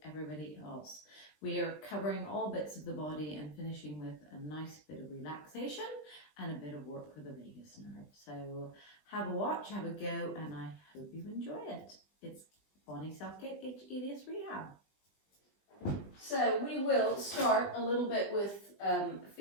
everybody else. We are covering all bits of the body and finishing with a nice bit of relaxation and a bit of work for the vagus nerve. So have a watch, have a go, and I hope you enjoy it. It's Bonnie Southgate, hEDS Rehab. So we will start a little bit with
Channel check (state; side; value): late; right; 20 ms